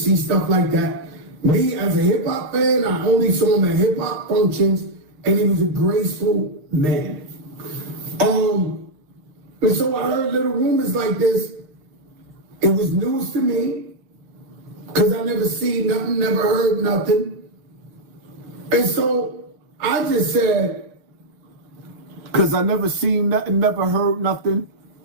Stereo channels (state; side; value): late; left; 6.5 ms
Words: stuff like that. Me, as a hip-hop fan, I only saw him at hip-hop functions and he was a graceful man. And so I heard little rumors like this. It was news to me because I never seen nothing, never heard nothing. And so I just said, because I never seen nothing, never heard nothing.